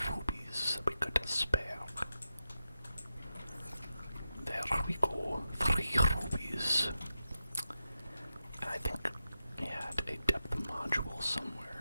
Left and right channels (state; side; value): inverted; both; correlation -0.90